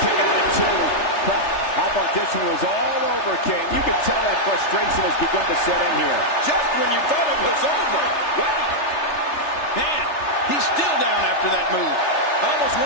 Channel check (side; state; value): right; late; 3.3 ms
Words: kick out at 2. How about this one was all over, King? You can tell that frustration has begun to set in here. Just when you thought it was over. Wow. Man, he's still down after that move. I almost